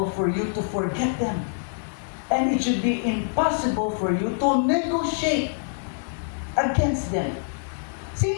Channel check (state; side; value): silent; right; 62 dB below the other